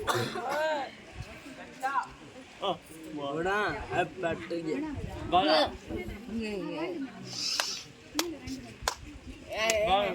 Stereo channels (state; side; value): identical; both; correlation 1.00